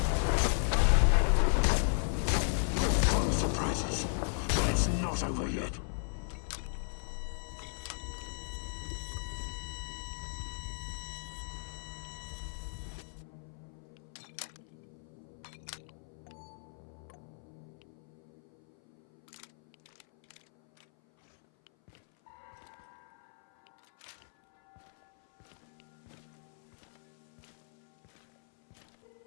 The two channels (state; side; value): silent; right; 54 dB below the other